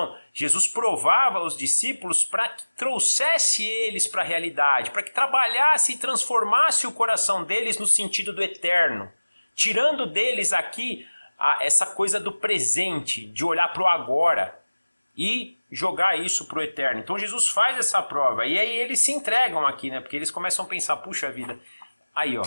Jesus provava os discípulos para que trouxesse eles para a realidade, para que trabalhasse e transformasse o coração deles no sentido do eterno, tirando deles aqui essa coisa do presente, de olhar para o agora e jogar isso para o eterno. Então Jesus faz essa prova e aí eles se entregam aqui, né? Porque eles começam a pensar, puxa vida, aí ó,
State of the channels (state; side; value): inverted; both; correlation -1.00